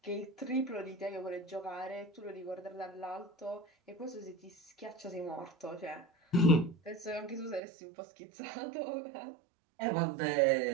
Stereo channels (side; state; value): left; drops out; at 7.6 s